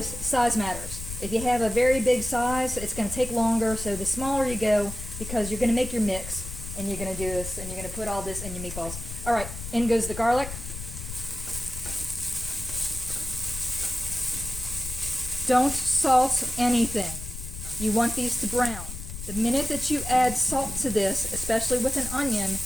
size matters. If you have a very big size, it's going to take longer, so the smaller you go, because you're going to make your mix, and you're going to do this, and you're going to put all this in your meatballs. Alright, in goes the garlic. Don't salt anything. You want these to brown. The minute that you add salt to this, especially with an onion,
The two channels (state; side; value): noise; left; rumble, 9 dB below the sound